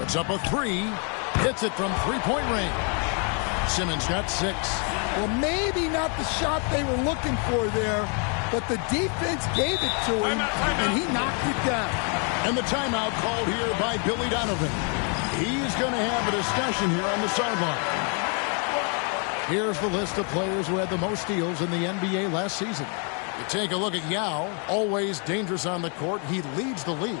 up a 3. Hits it from three-point range. Simmons got 6. Well, maybe not the shot they were looking for there, but the defense gave it to him, and he knocked it down. And the timeout called here by Billy Donovan. He's going to have a discussion here on the sideline. Here's the list of players who had the most steals in the NBA last season. You take a look at Yao, always dangerous on the court. He leads the league.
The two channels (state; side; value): quieter; right; 38.6 dB